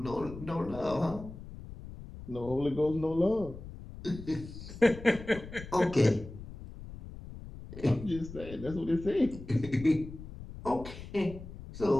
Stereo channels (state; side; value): noise; left; rumble, 13 dB below the sound